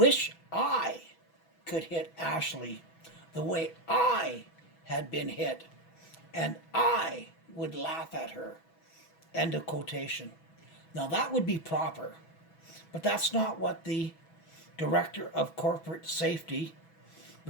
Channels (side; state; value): right; late; 6.1 ms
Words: I could hit Ashley the way I had been hit, and I would laugh at her. End of quotation. Now that would be proper, but that's not what the Director of Corporate Safety,